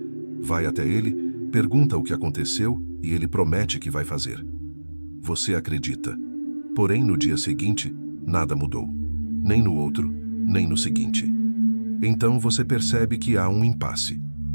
Vai até ele, pergunta o que aconteceu e ele promete que vai fazer. Você acredita. Porém, no dia seguinte, nada mudou. Nem no outro, nem no seguinte. Então você percebe que há um impasse.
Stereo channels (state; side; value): inverted; both; correlation -1.00